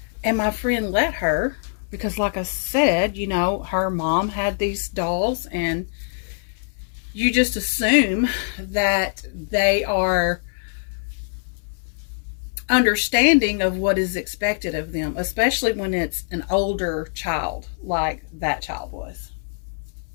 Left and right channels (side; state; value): right; silent; 62 dB below the other